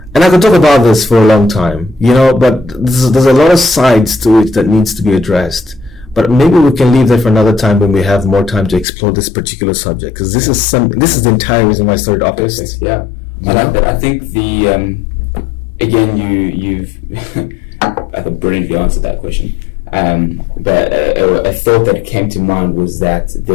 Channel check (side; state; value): right; drops out; at 8.8 s